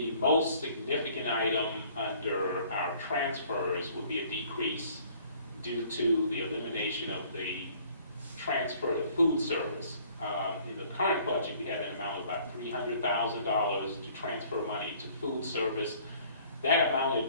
most significant item under our transfers would be a decrease due to the elimination of the transfer to food service. In the current budget, we had an amount of about $300,000 to transfer money to food service. That amount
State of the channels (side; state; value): both; inverted; correlation -0.57